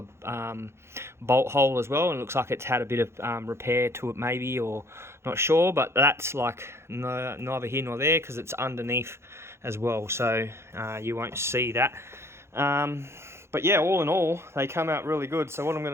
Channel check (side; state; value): left; late; 0.13 ms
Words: bolt hole as well, and it looks like it's had a bit of repair to it maybe, or not sure, but that's like neither here nor there because it's underneath as well, so you won't see that. But yeah, all in all, they come out really good. So what I'm